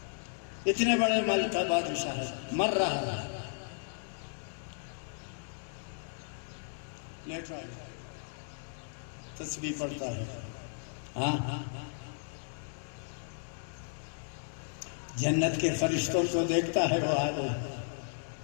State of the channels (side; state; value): right; silent; digital silence